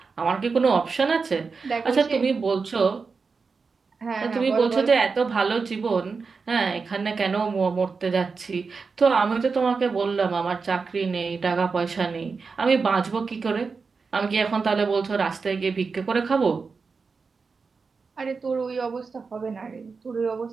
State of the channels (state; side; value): quieter; left; 4.8 dB